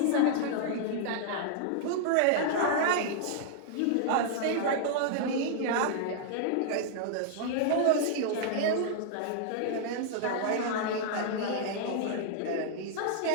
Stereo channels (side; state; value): both; different; correlation -0.01